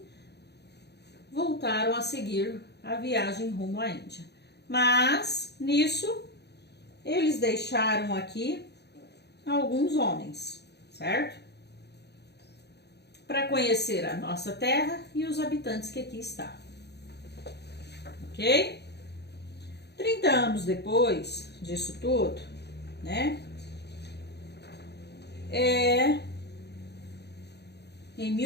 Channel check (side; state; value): right; late; 0.49 ms